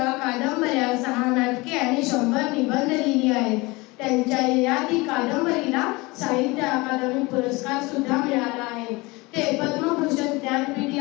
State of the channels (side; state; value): right; quieter; 23.8 dB